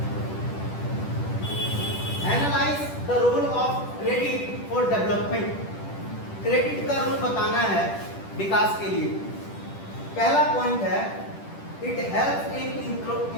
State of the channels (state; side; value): late; right; 10 ms